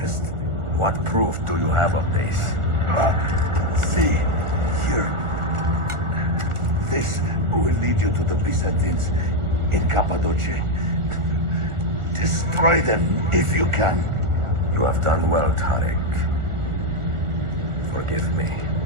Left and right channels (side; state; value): left; late; 1.4 ms